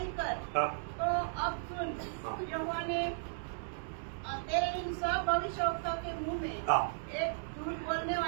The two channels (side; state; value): left; silent; digital silence